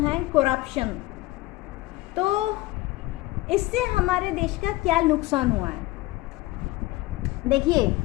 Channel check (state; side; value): quieter; right; 19.2 dB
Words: है करप्शन। तो इससे हमारे देश का क्या नुकसान हुआ है? देखिए,